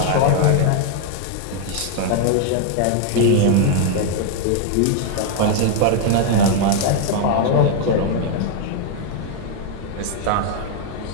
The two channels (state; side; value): different; both; correlation 0.00